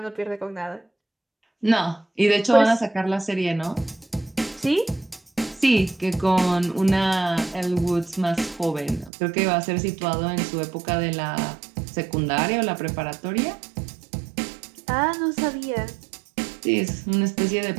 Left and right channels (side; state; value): left; drops out; at 9.1 s